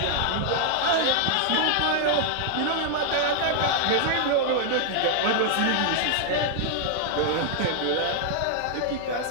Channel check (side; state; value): both; different; correlation 0.00